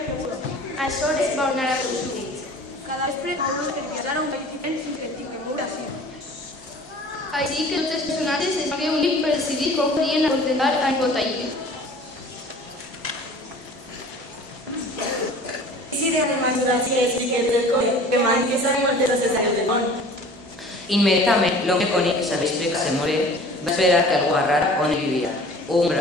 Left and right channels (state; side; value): normal; both; correlation 0.45